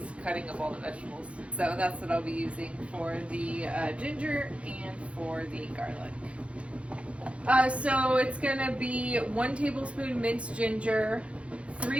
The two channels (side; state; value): left; late; 0.062 ms